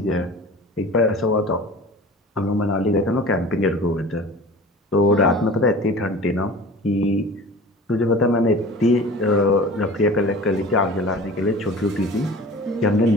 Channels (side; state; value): both; normal; correlation 0.40